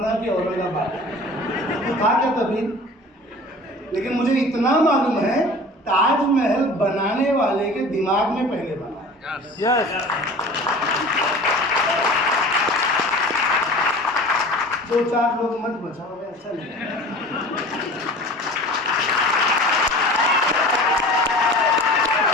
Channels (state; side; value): normal; both; correlation 0.40